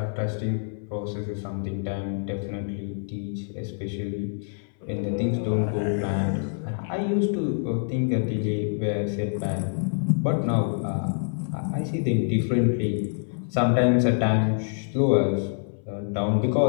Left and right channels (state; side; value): silent; right; 58 dB below the other